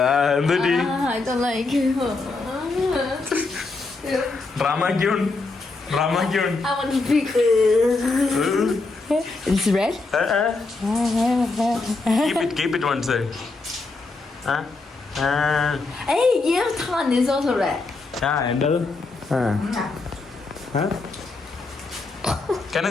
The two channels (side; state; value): right; quieter; 3.7 dB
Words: എന്തുപറ്റി? I don't like it. Drama queen. I want to puke. It's red? Keep it one side. Hey, your tongue is also red. എന്റത് Can I